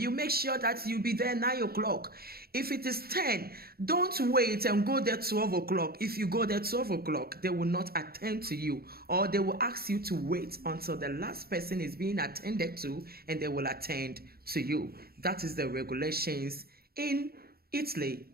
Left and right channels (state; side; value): late; left; 0.45 ms